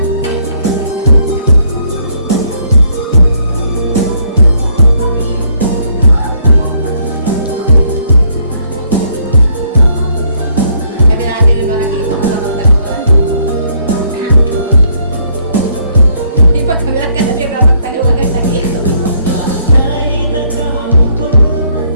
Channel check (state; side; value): inverted; both; correlation -0.68